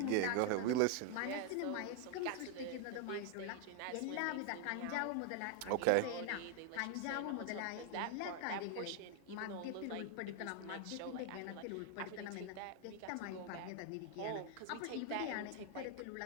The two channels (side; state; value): both; different; correlation 0.00